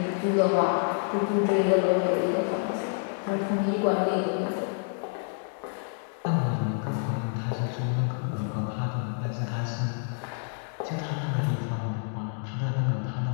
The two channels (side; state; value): right; silent; 59 dB below the other